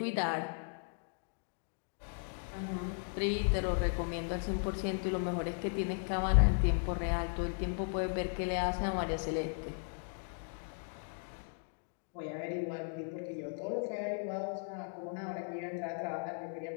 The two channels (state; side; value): silent; right; 53 dB below the other